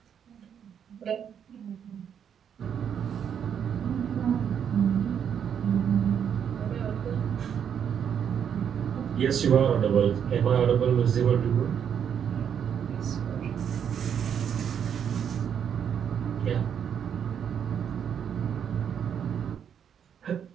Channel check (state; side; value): quieter; left; 8.2 dB